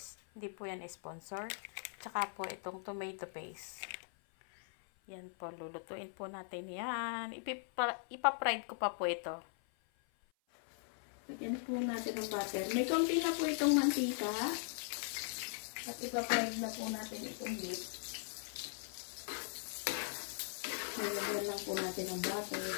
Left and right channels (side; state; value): right; silent; 51 dB below the other